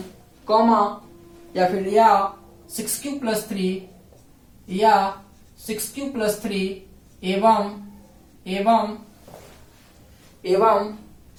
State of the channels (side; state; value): both; identical; correlation 1.00